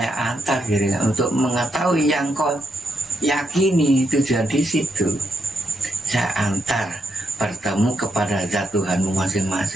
antar diri untuk mengetahui yang kau yakini tujuan di situ. Saya antar bertemu kepada zat Tuhanmu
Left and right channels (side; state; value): both; normal; correlation 0.80